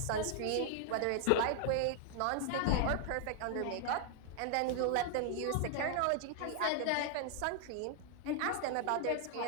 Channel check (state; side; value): different; both; correlation 0.00